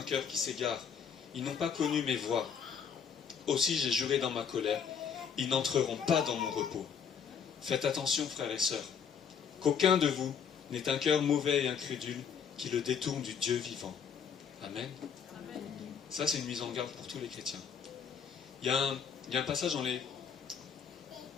cœur qui s'égare. Ils n'ont pas connu mes voies. Aussi j'ai juré dans ma colère, ils n'entreront pas dans mon repos. Faites attention, frères et sœurs, qu'aucun de vous n'ait un cœur mauvais et incrédule qui le détourne du Dieu vivant. Amen. Ça, c'est une mise en garde pour tous les chrétiens. Il y a un passage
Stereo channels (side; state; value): right; quieter; 7.1 dB